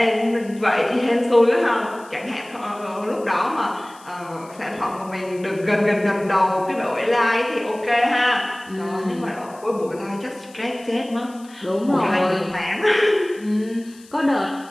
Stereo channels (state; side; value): noise; left; hiss, 24 dB below the sound